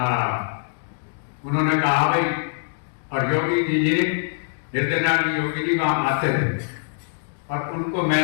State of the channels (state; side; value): silent; right; digital silence